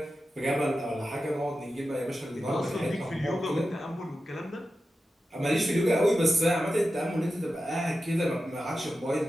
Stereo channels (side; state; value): both; normal; correlation 0.92